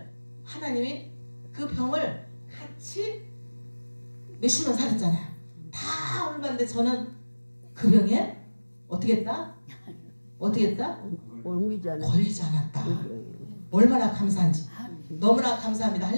하나님이 그 병을 같이 몇십 년 살았잖아요. 다 얼마인데 저는 그 병에 어떻게 했다? 걸리지 않았다. 얼마나 감사한지. 너무나 감사합니다.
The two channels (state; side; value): inverted; both; correlation -1.00